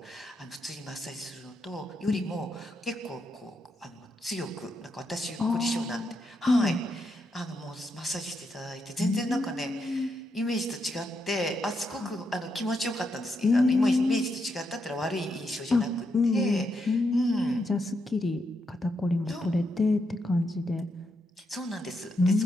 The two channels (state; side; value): normal; both; correlation 0.81